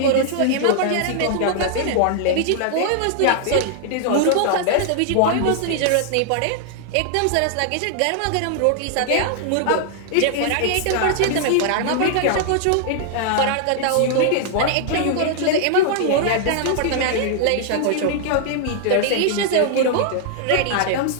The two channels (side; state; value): both; different; correlation -0.01